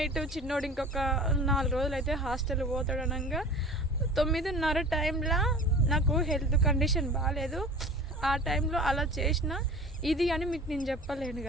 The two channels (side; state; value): both; normal; correlation 0.40